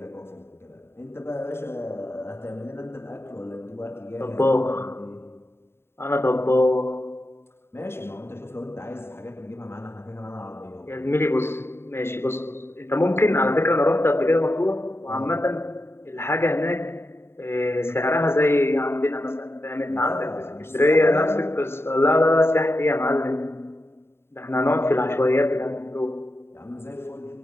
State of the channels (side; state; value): right; late; 0.12 ms